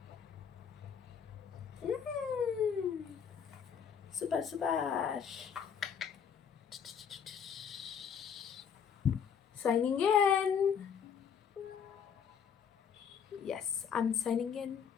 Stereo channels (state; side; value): quieter; right; 7.4 dB